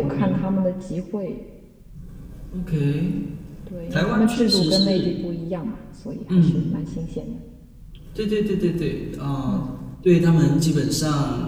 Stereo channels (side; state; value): both; identical; correlation 1.00